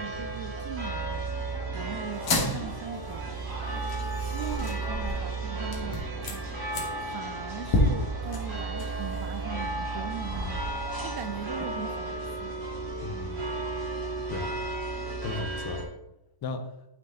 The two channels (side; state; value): right; late; 1.0 ms